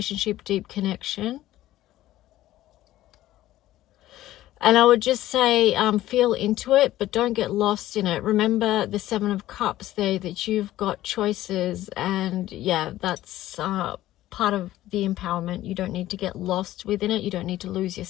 deep connection. And I would just say, feel into it, but don't get lost in it. Remember the 7 of Cups there, that you've got choices. And yeah, that's part of the empowerment. You don't need to get lost within it. You don't need to lose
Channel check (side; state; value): right; quieter; 14.7 dB